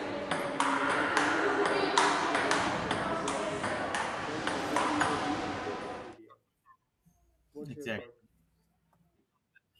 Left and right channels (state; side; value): identical; both; correlation 1.00